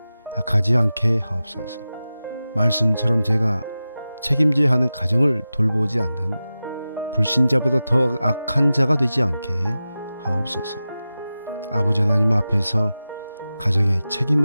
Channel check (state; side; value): inverted; both; correlation -0.94